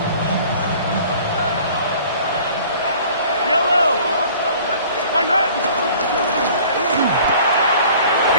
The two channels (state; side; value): inverted; both; correlation -0.50